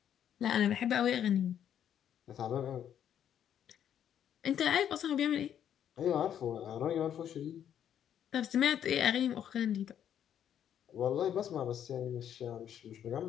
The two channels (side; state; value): right; quieter; 9.7 dB